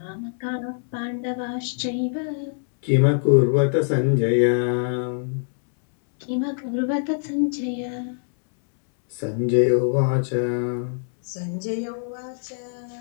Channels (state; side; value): silent; right; 63 dB below the other